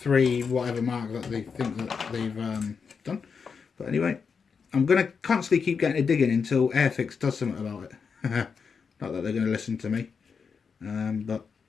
whatever mark that they think that they've done. But anyway, I'm going to constantly keep getting a dig in until Airfix does something about it. Not that they're going to listen to me. But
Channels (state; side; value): quieter; right; 5.8 dB